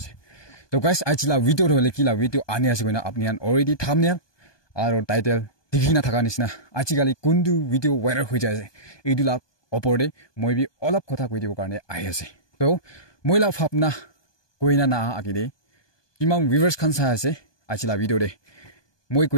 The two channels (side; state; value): right; late; 1.2 ms